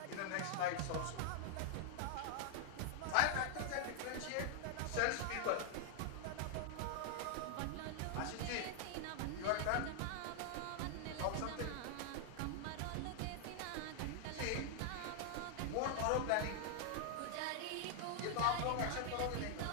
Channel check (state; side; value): different; both; correlation 0.00